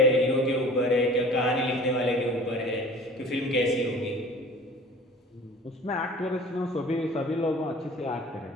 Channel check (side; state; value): both; normal; correlation 0.45